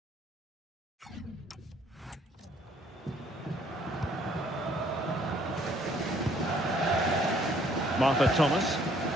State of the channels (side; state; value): both; normal; correlation 0.63